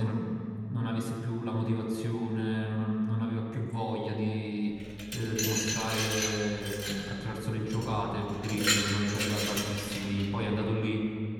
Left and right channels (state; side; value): identical; both; correlation 1.00